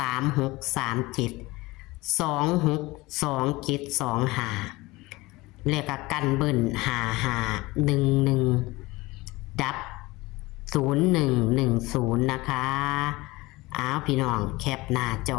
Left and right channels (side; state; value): right; quieter; 21.2 dB